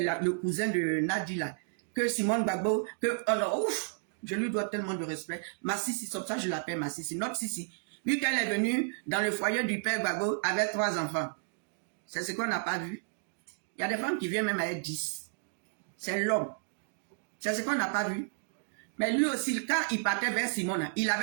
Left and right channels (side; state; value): left; silent; digital silence